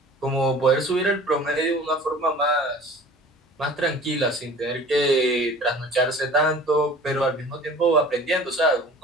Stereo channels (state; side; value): normal; both; correlation 0.45